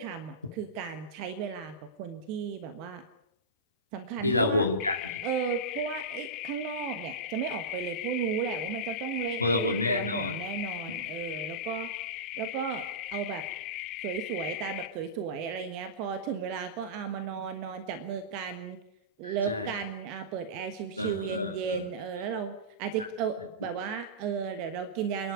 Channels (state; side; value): normal; both; correlation -0.17